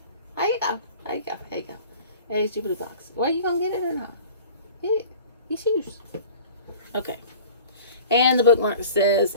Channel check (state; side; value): inverted; both; correlation -0.43